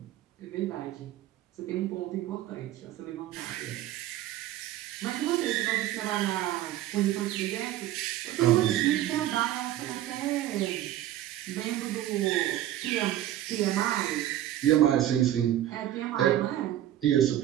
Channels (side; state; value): left; quieter; 13.0 dB